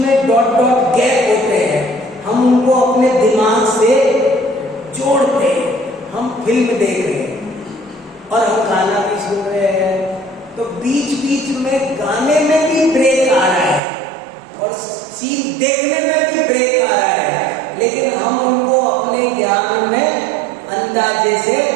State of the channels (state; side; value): drops out; left; at 13.8 s